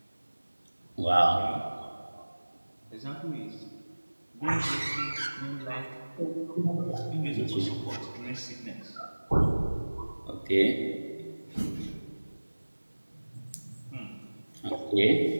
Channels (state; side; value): inverted; both; correlation -1.00